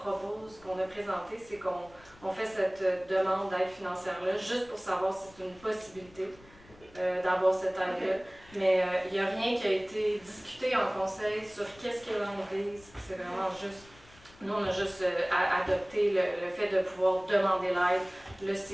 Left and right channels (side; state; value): left; noise; rumble, 25 dB below the sound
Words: qu'on a présenté, c'est qu'on fait cette demande d'aide financière-là, juste pour savoir si c'est une possibilité d'avoir cette aide-là. Mais il n'y a rien qui a été discuté en conseil sur qu'est-ce qu'il y a dans l'église. C'est vraiment juste... Nous, on a juste adopté le fait de pouvoir demander l'aide. Là,